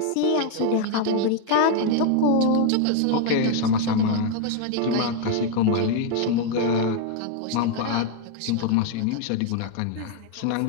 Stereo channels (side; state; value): both; different; correlation 0.01